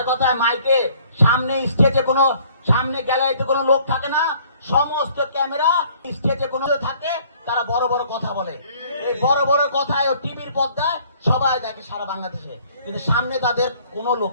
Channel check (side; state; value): both; inverted; correlation -0.58